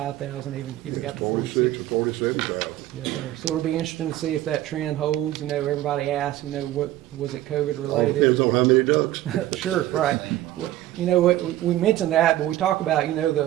even got to 46 or 47,000. Yes, sir. So it'll be interesting to see if that trend holds. You know, everybody asks, what was it COVID related? Depends on how many ducks. Sure, right. You know, we mentioned that, but we talk about,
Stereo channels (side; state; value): left; quieter; 14.5 dB